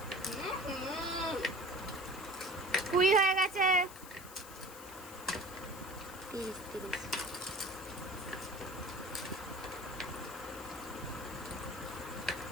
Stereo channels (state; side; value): noise; left; hiss, 15 dB below the sound